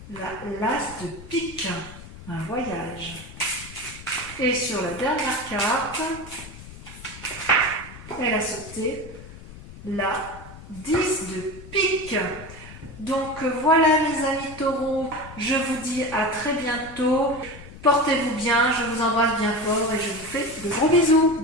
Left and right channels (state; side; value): noise; left; rumble, 16 dB below the sound